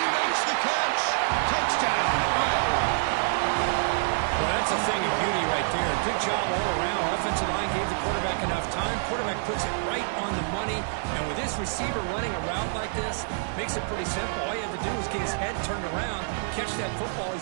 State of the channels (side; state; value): left; silent; digital silence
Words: he makes the catch. Touchdown, Iowa. Well, that's a thing of beauty right there. Good job all around. Offensive line gave the quarterback enough time. Quarterback puts it right on the money. And with this receiver running a route like this, makes it pretty simple. All you had to do was get his head turned around, catch that football.